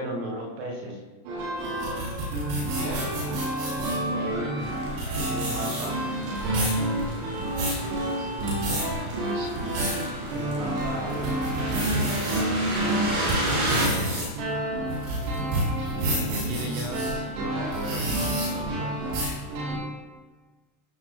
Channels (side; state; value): left; late; 34 ms